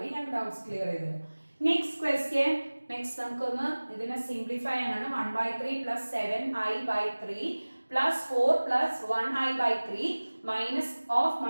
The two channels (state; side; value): inverted; both; correlation -1.00